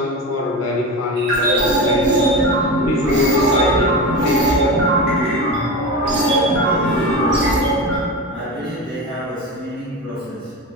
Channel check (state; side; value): normal; both; correlation 0.24